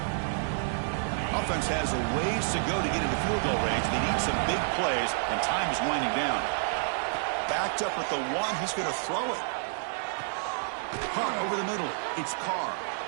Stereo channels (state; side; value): silent; left; 58 dB below the other